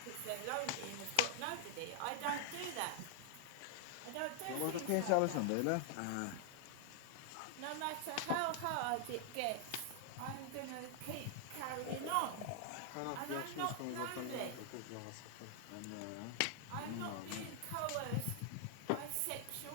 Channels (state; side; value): different; both; correlation 0.00